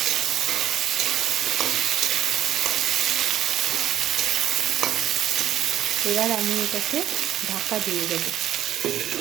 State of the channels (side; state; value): left; quieter; 11.9 dB